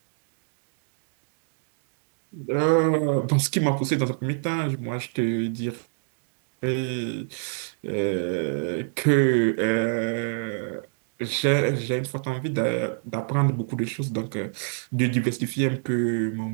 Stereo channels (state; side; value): silent; left; digital silence